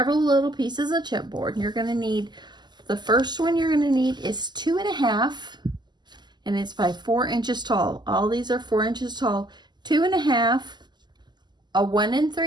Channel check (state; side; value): late; left; 0.21 ms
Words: little pieces of chipboard. You're going to need, the first one you're going to need is 2.5. And it's by 4 inches tall. All these are 4 inches tall. 2.5, a 1